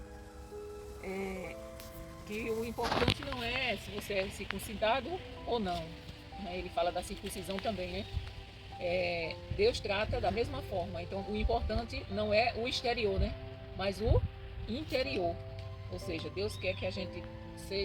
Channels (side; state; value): both; identical; correlation 1.00